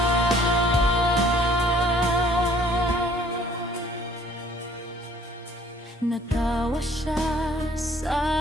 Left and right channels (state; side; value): normal; both; correlation 0.57